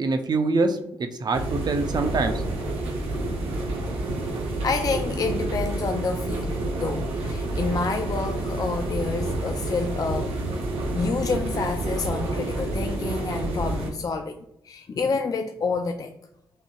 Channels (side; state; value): both; normal; correlation 0.68